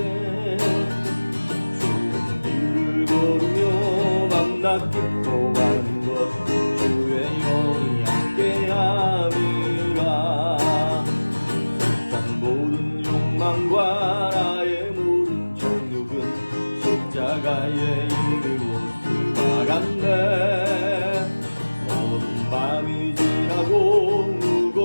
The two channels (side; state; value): both; inverted; correlation -1.00